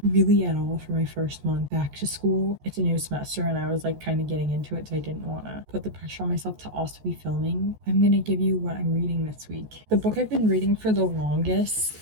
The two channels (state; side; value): late; left; 14 ms